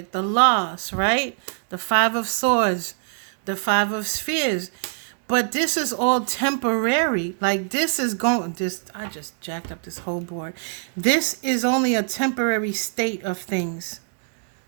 the loss, right? The Five of Swords, the Five of Spheres. But this is all temporary. Like this is going, I just jacked up this whole board. This is only a temporary state of things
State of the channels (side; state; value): left; silent; digital silence